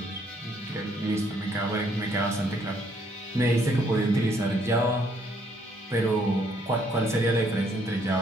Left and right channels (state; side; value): normal; both; correlation 0.68